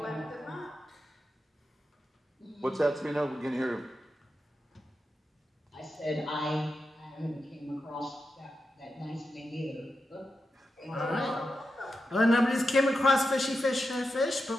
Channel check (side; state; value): both; normal; correlation 0.89